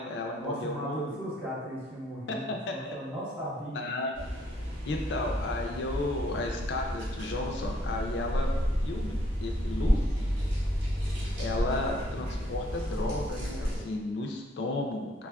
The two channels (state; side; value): normal; both; correlation 0.66